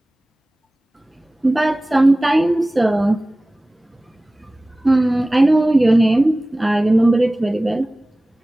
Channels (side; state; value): both; normal; correlation 0.98